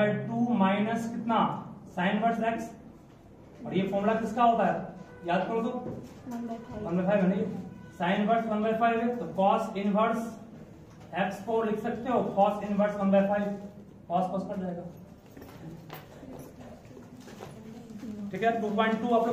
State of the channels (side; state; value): both; identical; correlation 1.00